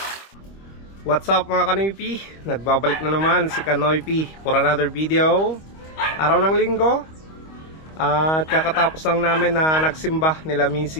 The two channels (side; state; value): right; late; 25 ms